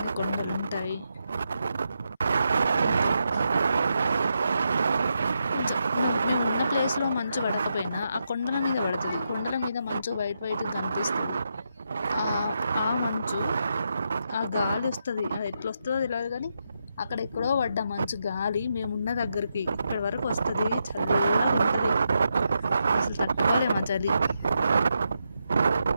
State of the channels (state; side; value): inverted; both; correlation -0.83